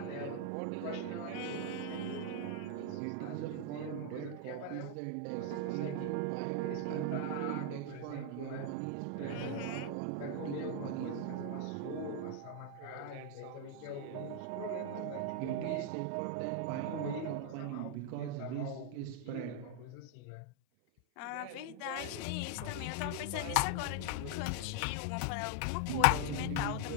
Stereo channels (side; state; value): both; different; correlation 0.00